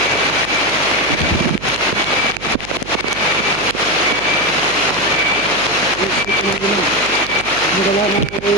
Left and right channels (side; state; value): right; noise; hum, 15 dB below the sound